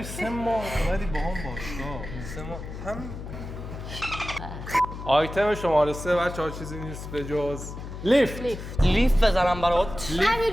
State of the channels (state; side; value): noise; left; hum, 9 dB below the sound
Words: 3 ماه اومدی با هم باشگاه 3 ماه هم آیتم شماره 3 بچه‌ها چیزی نیست به جز لیفت لیف بزنم برات